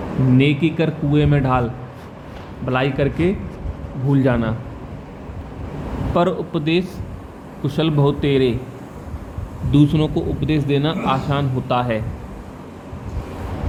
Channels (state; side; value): identical; both; correlation 1.00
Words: नेकी कर कुएं में ढाल, भलाई करके भूल जाना। पर उपदेश कुशल बहुत तेरे, दूसरों को उपदेश देना आसान होता है।